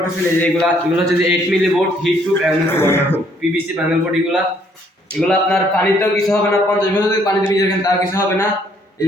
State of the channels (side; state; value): both; normal; correlation 0.66